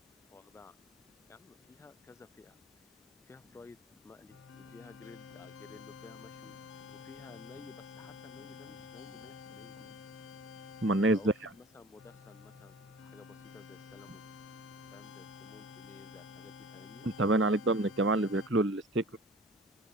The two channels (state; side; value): normal; both; correlation 0.44